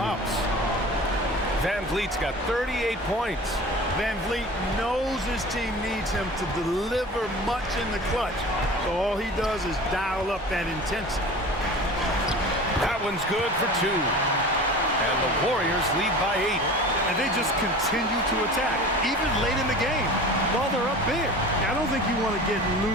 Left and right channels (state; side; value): normal; both; correlation 0.38